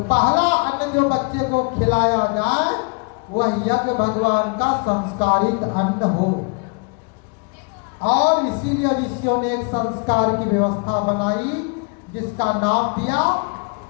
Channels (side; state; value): right; quieter; 35.4 dB